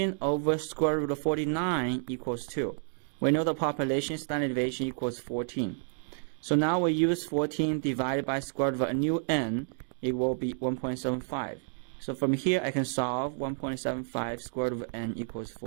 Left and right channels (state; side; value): silent; left; digital silence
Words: over square root of 49 equals 2. We know the population standard deviation equals 14. So now we use 14 divided by square root of a new n, it will be 1.75. So from here I can solve 1.75 square root of n equals